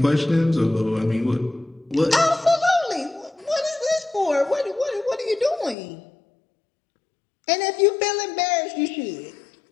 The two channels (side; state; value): right; drops out; at 5.8 s